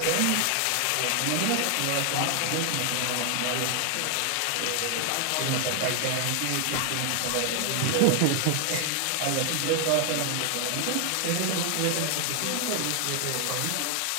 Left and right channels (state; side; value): different; both; correlation 0.00